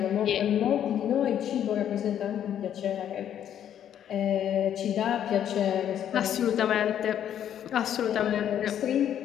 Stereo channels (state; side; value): quieter; right; 10.0 dB